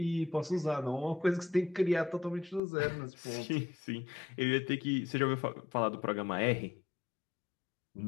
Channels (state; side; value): drops out; right; at 2.6 s